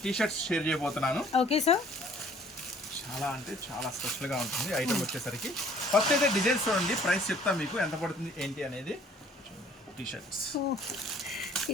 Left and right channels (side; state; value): both; normal; correlation 0.56